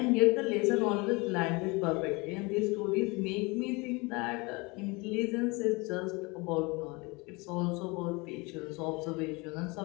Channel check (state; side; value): quieter; right; 26.5 dB